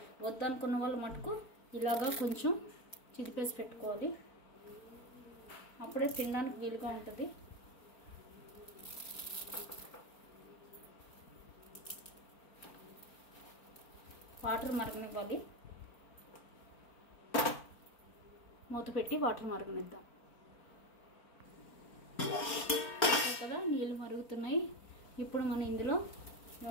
వద్దనుకున్న వాళ్ళు మటుకు ఇలాగా కొంచెం చిదిపేసి పెట్టుకోవాలి. అప్పుడే తినడానికి వీలుగా ఉంటుంది. వాటర్ మరగనివ్వాలి. మూత పెట్టి వాటర్ మరగనిద్దాం కదా. నీళ్ళు మరుగుతున్నాయి. ఇప్పుడు మనం ఇందులో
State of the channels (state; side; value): late; right; 4.4 ms